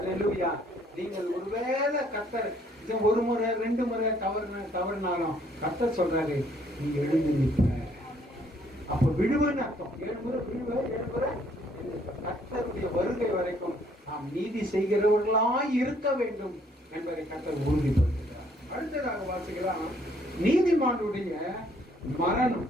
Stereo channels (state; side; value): normal; both; correlation 0.65